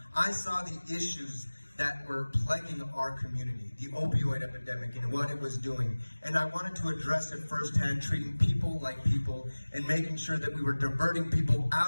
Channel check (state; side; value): inverted; both; correlation -1.00